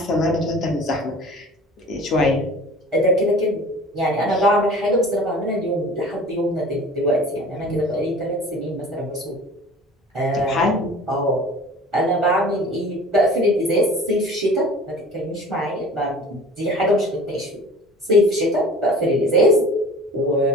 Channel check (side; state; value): both; normal; correlation 0.44